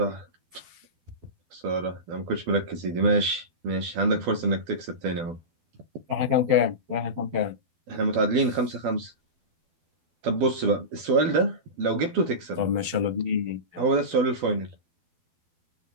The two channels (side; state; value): left; late; 12 ms